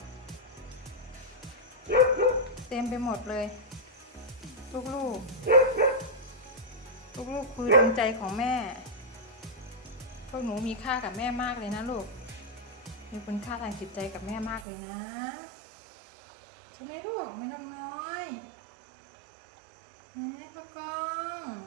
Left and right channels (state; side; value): drops out; left; at 14.7 s